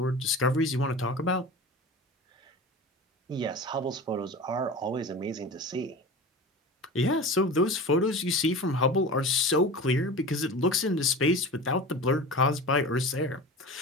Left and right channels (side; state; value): both; normal; correlation 0.33